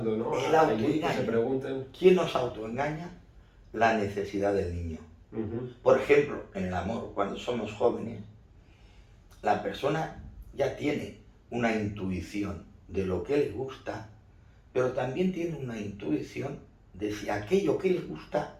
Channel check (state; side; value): identical; both; correlation 1.00